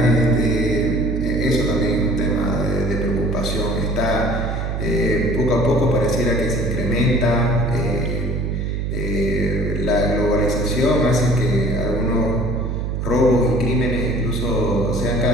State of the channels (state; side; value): noise; right; hum, 2 dB below the sound